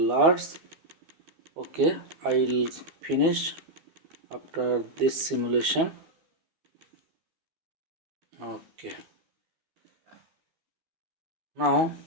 Okay, I'll finish after this simulation. Okay, now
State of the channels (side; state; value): left; late; 12 ms